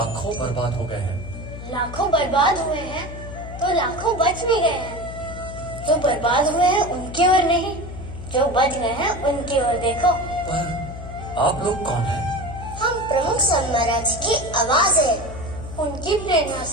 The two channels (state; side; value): noise; left; hum, 11 dB below the sound